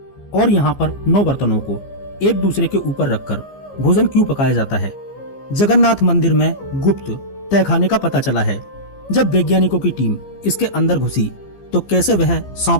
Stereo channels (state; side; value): late; right; 15 ms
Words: और यहाँ पर 9 बर्तनों को एक दूसरे के ऊपर रखकर भोजन क्यों पकाया जाता है? जगन्नाथ मंदिर में गुप्त तहखाने का पता चला है। जब वैज्ञानिकों की टीम इसके अंदर घुसी तो कैसे वह